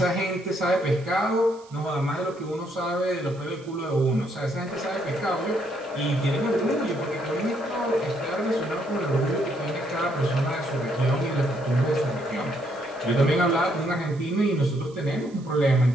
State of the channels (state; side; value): noise; right; hiss, 26 dB below the sound